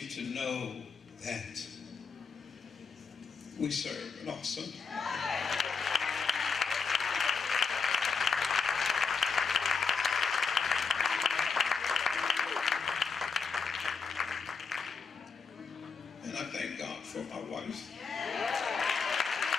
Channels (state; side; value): quieter; right; 5.2 dB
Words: to know that we serve an awesome and I thank God for my wife.